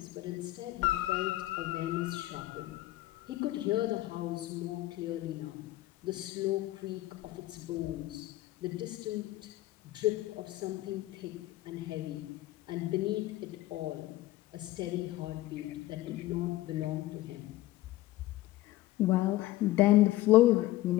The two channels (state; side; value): quieter; right; 16.6 dB